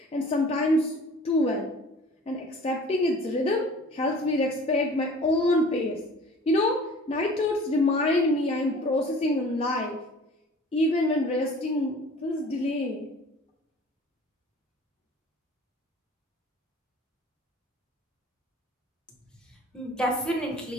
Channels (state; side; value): normal; both; correlation 0.46